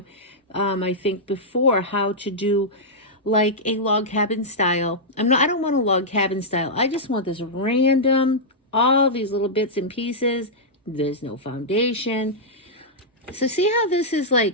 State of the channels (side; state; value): both; normal; correlation -0.09